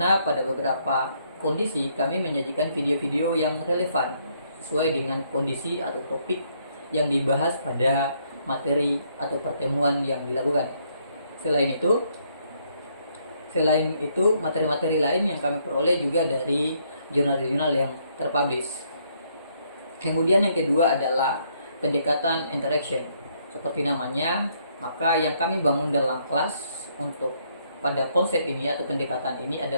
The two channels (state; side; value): inverted; both; correlation -0.71